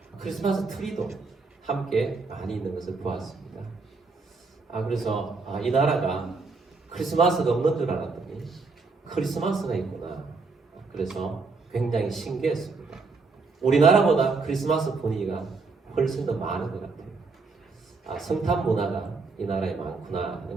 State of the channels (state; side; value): quieter; left; 4.1 dB